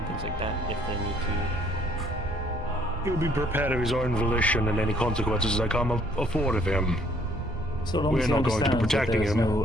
things like that if they need to. He will be prepared of his own volition, and any consequences that come afford of him. So long We're as he not going to be understands that protecting there is him. no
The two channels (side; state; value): both; normal; correlation 0.63